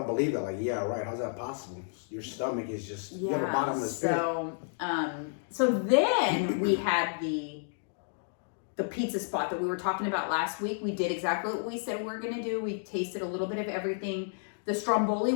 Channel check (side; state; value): right; silent; digital silence